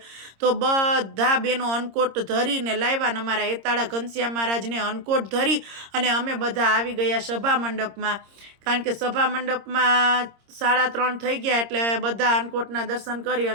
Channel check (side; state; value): left; late; 26 ms